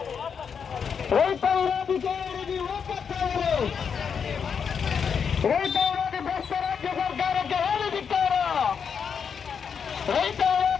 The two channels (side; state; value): right; quieter; 6.7 dB